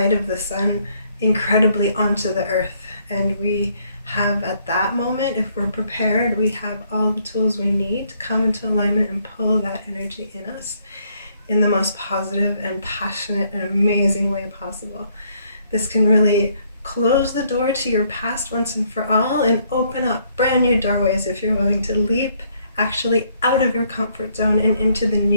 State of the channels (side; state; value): both; inverted; correlation -0.68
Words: of the sun incredibly onto the earth, and we have, at that moment, if we're prepared, we have all the tools we need to come into alignment and pull that energy in us in the most positive and passionate and amazing way possible. This can really close the door to your past once and for all and open up brand new doorways if you're willing to leap actually out of your comfort zone and into the